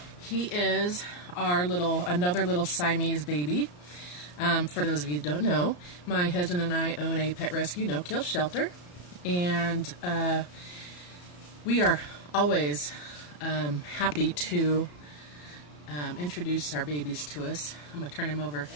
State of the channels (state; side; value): late; right; 34 ms